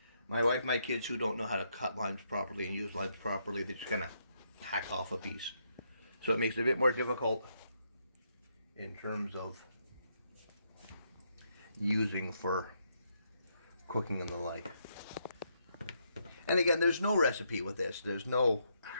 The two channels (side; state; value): both; inverted; correlation -0.77